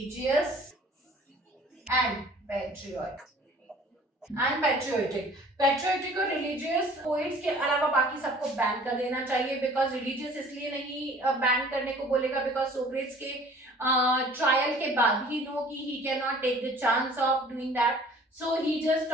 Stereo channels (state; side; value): normal; both; correlation 0.50